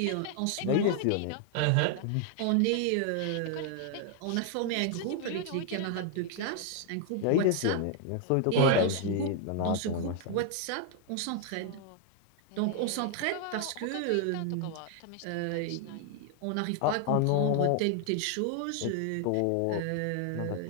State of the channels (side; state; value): both; different; correlation 0.00